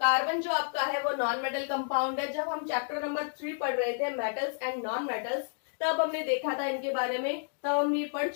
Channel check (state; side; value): silent; right; digital silence